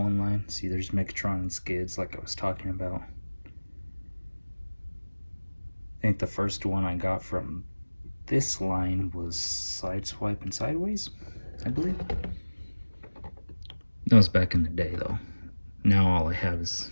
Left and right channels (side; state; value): both; inverted; correlation -1.00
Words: line. See, there's Megatron and Skids like I was talking about. I think the first one I got from this line was Sideswipe and Sideways, I believe. That was back in the day though. Now all I have is